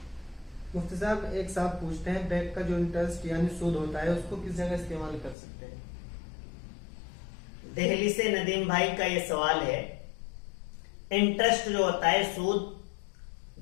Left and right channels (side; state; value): right; drops out; at 5.4 s